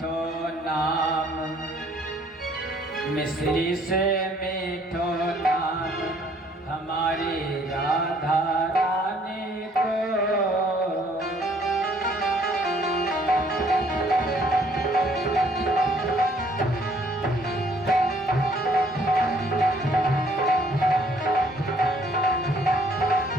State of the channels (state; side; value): normal; both; correlation 0.62